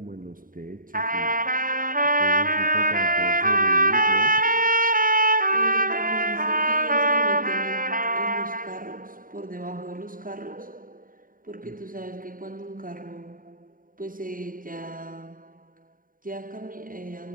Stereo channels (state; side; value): late; left; 0.40 ms